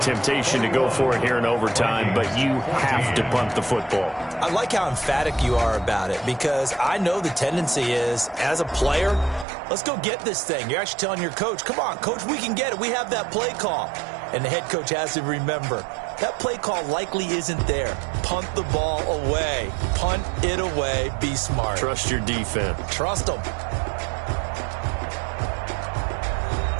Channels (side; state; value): left; drops out; at 9.5 s